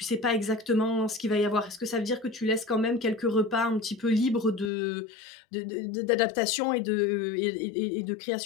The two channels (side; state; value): right; drops out; at 4.7 s